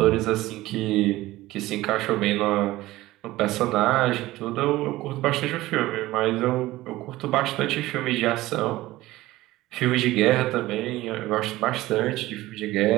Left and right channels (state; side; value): quieter; left; 17.4 dB